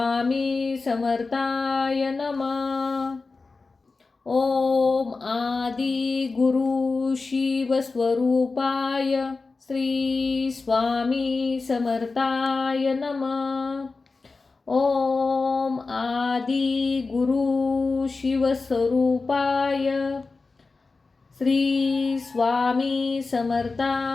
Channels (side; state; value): right; quieter; 4.0 dB